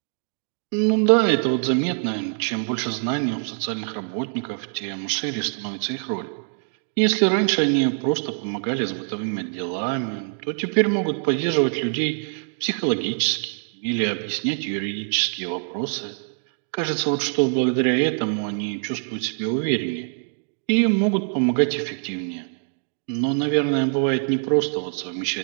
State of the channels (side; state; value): left; silent; 63 dB below the other